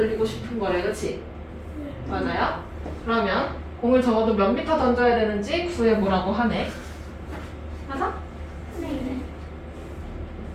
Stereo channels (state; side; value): identical; both; correlation 1.00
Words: 싶은 거래, 그치? 맞아요? 그러면 공을 적어도 몇 미터 던져야 되는지 구해보라고 하네. 맞아? 네.